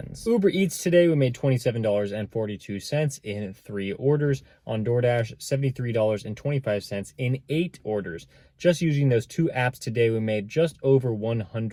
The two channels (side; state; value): both; identical; correlation 1.00